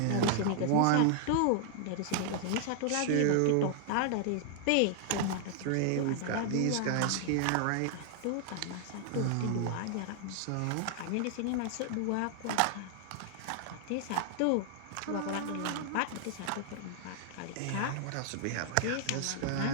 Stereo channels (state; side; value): different; both; correlation 0.00